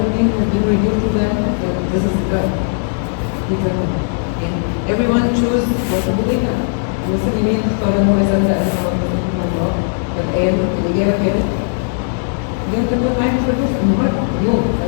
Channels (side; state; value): right; silent; digital silence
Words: think has been revealed to them that this is God. And everyone chose what to believe in. المسلمين اختاروا انه يصدق انه ربنا الله فالآن الإجابة كانت اليوم تكون معاك في الفلوس النهارده اليوم